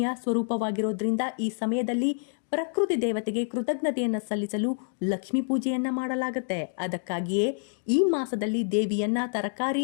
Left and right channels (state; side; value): silent; right; digital silence